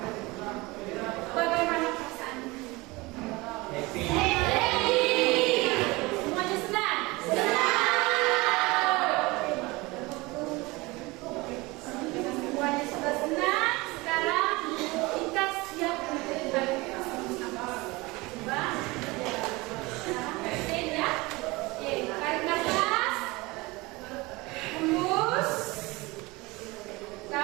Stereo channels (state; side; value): quieter; left; 23.0 dB